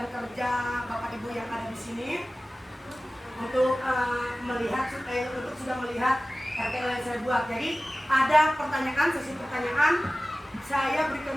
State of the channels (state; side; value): normal; both; correlation 0.97